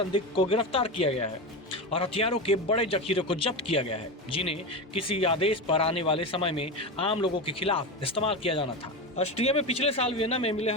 को गिरफ्तार किया गया है और हथियारों के बड़े जखीरे को जब्त किया गया है, जिन्हें किसी आदेश पर आने वाले समय में आम लोगों के खिलाफ इस्तेमाल किया जाना था। ऑस्ट्रिया में पिछले साल वियना में मिले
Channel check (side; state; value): both; normal; correlation 0.20